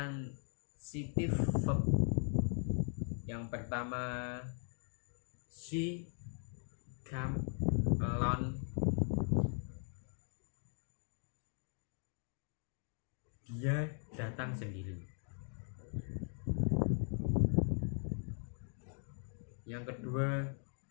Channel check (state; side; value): silent; right; 51 dB below the other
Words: verb. Yang pertama, she came alone. Dia datang sendiri. Yang kedua,